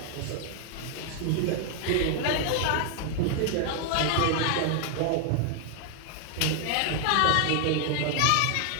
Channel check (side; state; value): both; different; correlation 0.00